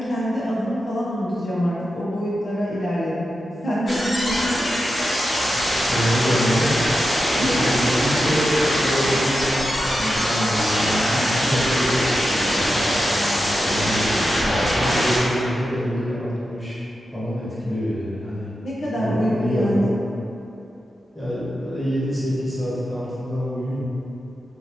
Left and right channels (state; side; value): normal; both; correlation 0.90